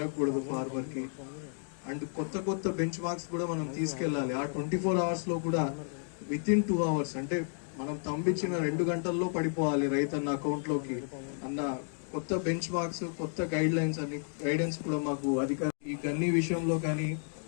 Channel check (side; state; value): right; silent; 56 dB below the other